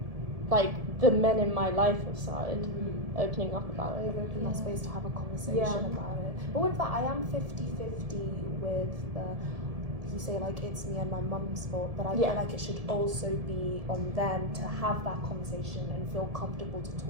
like the men in my life have started opening up about it. Open that space to have a conversation about it. But with that, I am 50-50 with the, you say like it's me and my mum's fault, but I feel like it should also be on them to have that conversation and feel comfortable to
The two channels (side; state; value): left; late; 1.7 ms